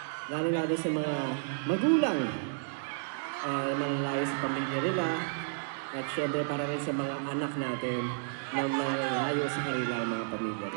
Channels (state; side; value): silent; left; 57 dB below the other